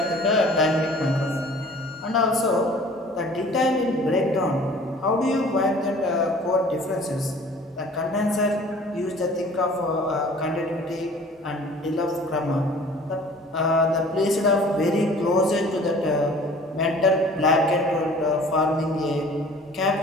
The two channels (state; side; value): normal; both; correlation 0.49